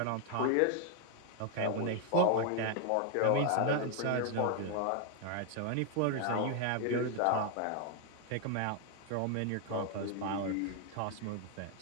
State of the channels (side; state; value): both; different; correlation 0.00